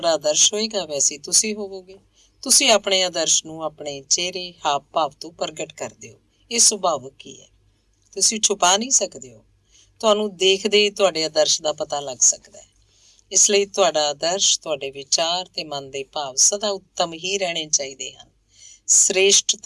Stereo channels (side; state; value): both; identical; correlation 1.00